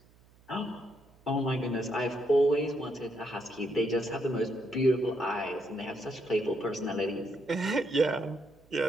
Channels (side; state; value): right; noise; hum, 28 dB below the sound